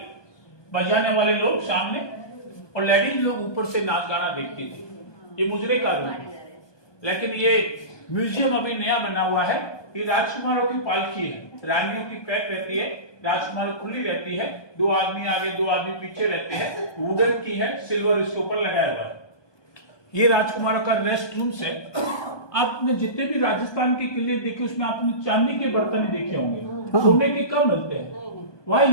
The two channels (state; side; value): late; right; 1.2 ms